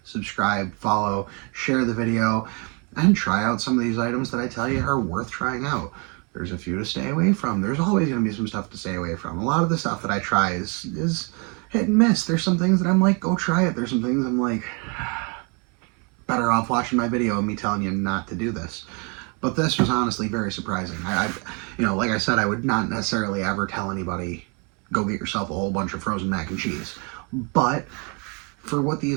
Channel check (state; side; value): quieter; left; 33.9 dB